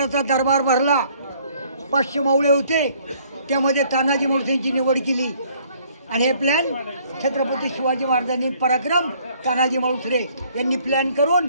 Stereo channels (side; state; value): both; inverted; correlation -0.61